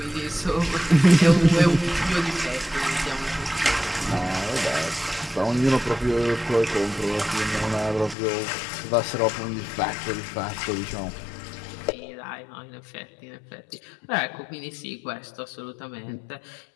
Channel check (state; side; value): drops out; right; at 8.2 s